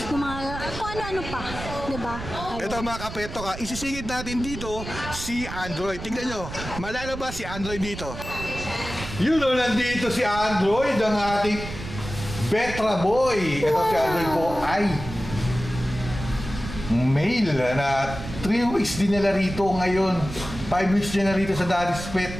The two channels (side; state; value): right; noise; rumble, 10 dB below the sound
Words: ng mga kung ano-ano pa. Diba? Ito mga kapeto ka, isisingit natin dito si Android. Tingnan nyo, malalabas si Android dito. Yun o, nandito si Android, ang ating Vetra boy. Ito si Android po ay male na 3 weeks din nila rito ngayon. 5 weeks din na rito sa Daddy's Pet.